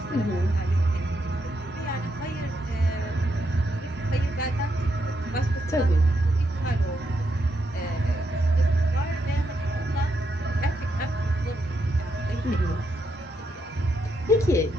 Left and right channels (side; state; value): both; normal; correlation 0.80